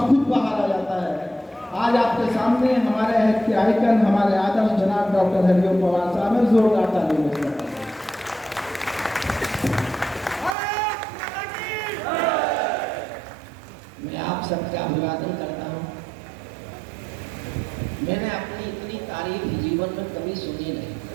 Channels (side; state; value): left; drops out; at 10.6 s